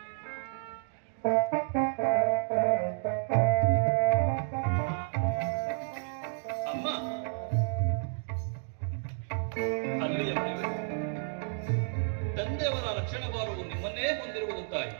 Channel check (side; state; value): left; silent; digital silence